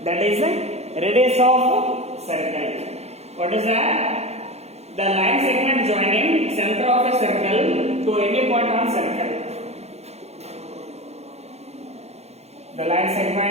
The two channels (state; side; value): late; left; 0.31 ms